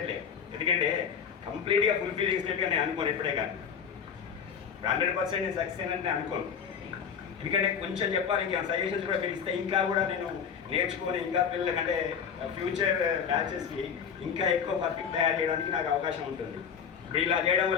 ఎందుకంటే కంప్లీట్గా ఫుల్ఫిల్ చేసినట్టుగా నేను అనుకోను ఎప్పుడే, కానీ 100% నేను సక్సెస్ అయినట్టు నేను అనుకోను. ఎందుకంటే కొంచెం చెప్పాలి, ఇంకా సజెషన్స్ కూడా పిలిస్తే ఇంకా కూడా నేను నేర్చుకొని ఇంకా పిల్లలకంటే ఫ్యూచర్ బ్యాచెస్కి ఇంకా ఎక్కువ పర్ఫెక్ట్ తయారు చేయడానికి నాకు అవకాశం ఉంటుంది. ఇప్పుడు ఇలా చేయడం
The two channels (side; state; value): right; quieter; 7.2 dB